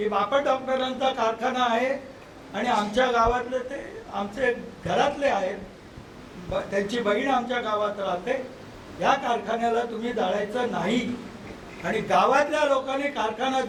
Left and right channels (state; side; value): identical; both; correlation 1.00